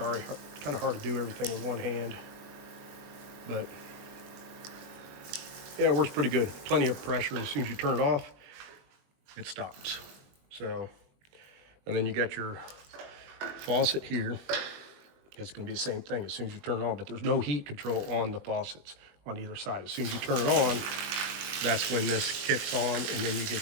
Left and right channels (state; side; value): late; left; 21 ms